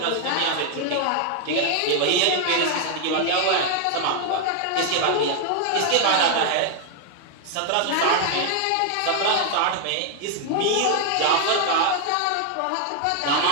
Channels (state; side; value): different; both; correlation 0.00